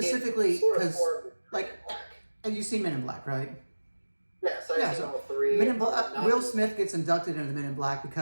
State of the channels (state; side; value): inverted; both; correlation -1.00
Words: because, like, Black. and you've seen Men in Black, right? Yes, I've seen all 3. Men in Black. Will Smith gets inducted into the Men in Black